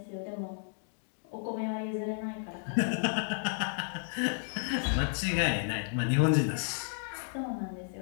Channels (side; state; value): right; silent; digital silence